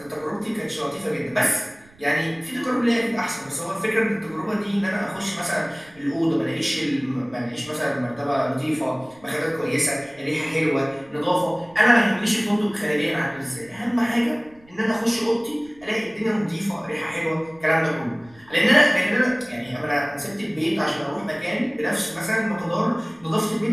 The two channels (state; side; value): noise; right; rumble, 27 dB below the sound